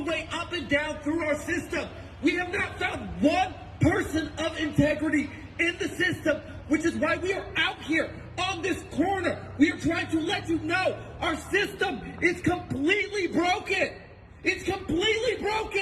way up and down through our system. We have not found one person of integrity in the system, which is why we are out here on this corner. We are trying to let you know our system is completely broken. It's completely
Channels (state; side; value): identical; both; correlation 1.00